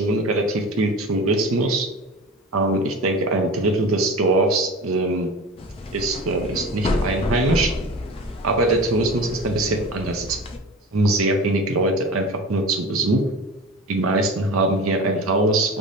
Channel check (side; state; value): both; normal; correlation 0.33